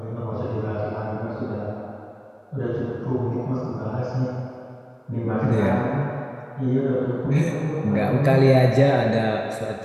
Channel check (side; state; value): both; identical; correlation 1.00